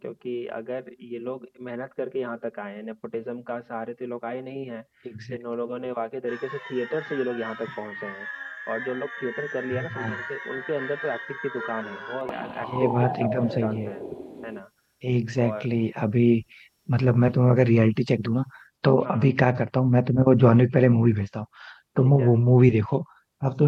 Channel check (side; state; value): both; identical; correlation 1.00